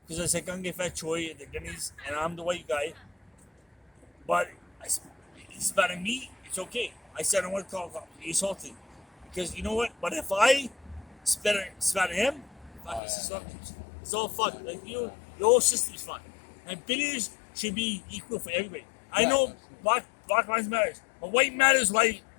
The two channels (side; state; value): right; drops out; at 13.0 s